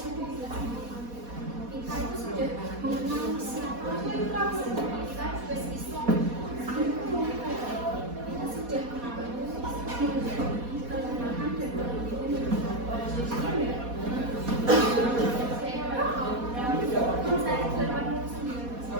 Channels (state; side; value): late; left; 4.2 ms